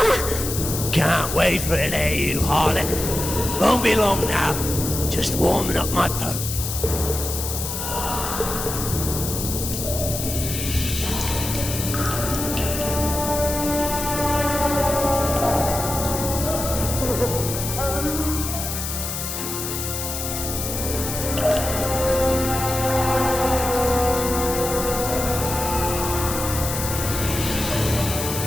Can't wait for it, eh, you harlot? Won't be long now. Just warming up my poke.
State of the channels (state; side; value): noise; left; hiss, 5 dB below the sound